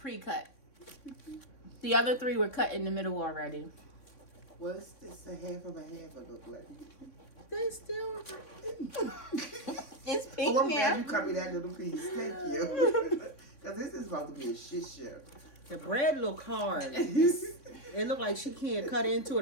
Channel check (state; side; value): late; right; 3.6 ms